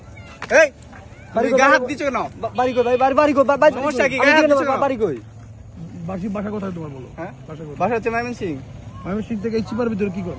এই বাড়ি গায়ে হাত দিছো কেন? বাড়ি কই ভাই? বাড়ি কই? সমস্যা কি? গায়ে হাত দিছো কেন? বাড়ি কই? বাসা কোথায় তোমার বলো? হ্যাঁ বাসা কোথায়? বাসা হচ্ছে ময়মনসিং। ময়মনসিং থেকে এই চিপার ভিতরে কি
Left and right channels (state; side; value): identical; both; correlation 1.00